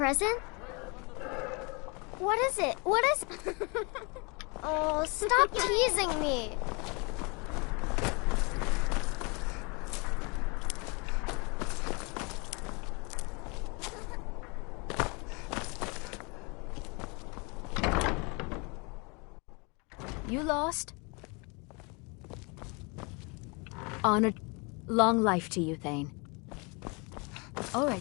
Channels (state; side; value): quieter; right; 30.5 dB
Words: What is it? What is... Oh, stop teasing me. You lost? Honored. Long life to you, Thane. All right,